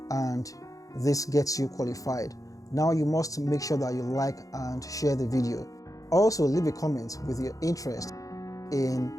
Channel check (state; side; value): late; right; 0.17 ms